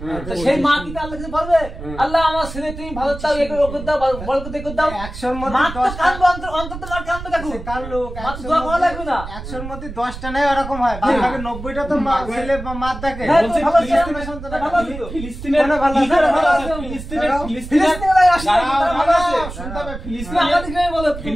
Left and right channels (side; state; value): right; noise; rumble, 10 dB below the sound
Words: তো সেই মা কি আল্লাহ কাছে বলবে আল্লাহ আমার ছেলে তুমি ভালো চাও, এ করে দাও, বড় করতে করে দাও? 100-র মধ্যে মা তো 10টা কাঁদবে, অন্তত মার কাঁদবে, দেখো কার লোক, মা তো দোয়া করা লাগবে না। 100-র মধ্যে 10টা নেই, ওরকম হয়। বাদ বাকি 90টা তো ছেলে বা মার দেখে। হ্যাঁ, তো বলছে ভালো আছে, ফিলিস্তিনের সন্তান ভালো আছে তো। ফিলিস্তিনের কোনো ভালো কি করে আছে? ভালো আছে? ভালো আছে। ফিলিস্তিনের ফিলিস্তিনের আসলে দাঁড়াও, তারা ভালো আছে। দাঁড়াও, শুনতে হবে। তুমি ফিলিস্তিনের আমাদের গ্রামে বলো, তুমি